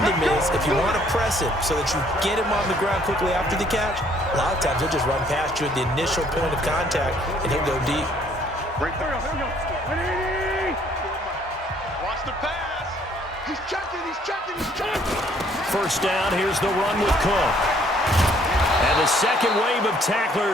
him is if you want to press him so that you get him on the ground quickly after the catch, a lot of times he'll just run past you at the initial point of contact, and he'll go deep. Watch the pass. He's checking. First down, here's the run with Cook. And the second wave of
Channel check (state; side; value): normal; both; correlation 0.63